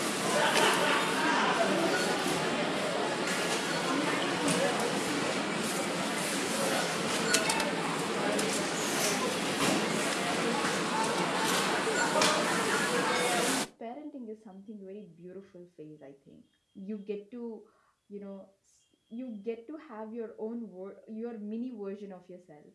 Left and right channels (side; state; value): both; identical; correlation 1.00